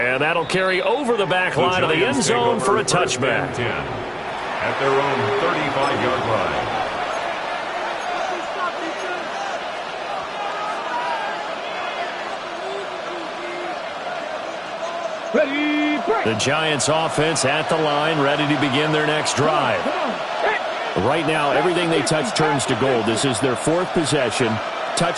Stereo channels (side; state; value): both; identical; correlation 1.00